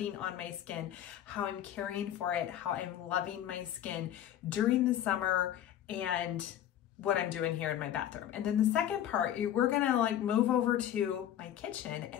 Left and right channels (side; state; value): right; quieter; 11.2 dB